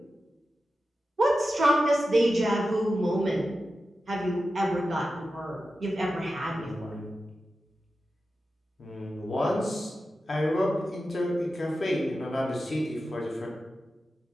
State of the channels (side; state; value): both; normal; correlation 0.92